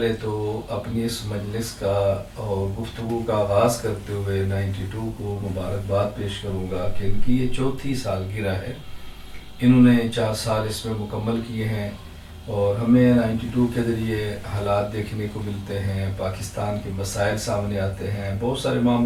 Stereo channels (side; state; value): both; identical; correlation 1.00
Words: तो अपनी इस मजलिस का और गुफ्तगू का आगाज़ करते हुए 92 को मुबारकबाद पेश करूँगा कि इनकी ये चौथी सालगिरह है। इन्होंने 4 साल इसमें मुकम्मल किए हैं और हमें 92 के ज़रिए हालात देखने को मिलते हैं, पाकिस्तान के मसाइल सामने आते हैं, बहुत सारे